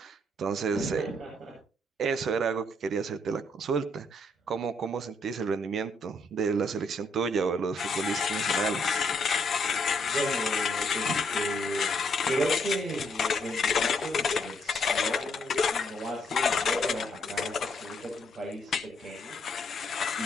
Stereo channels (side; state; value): both; normal; correlation 0.72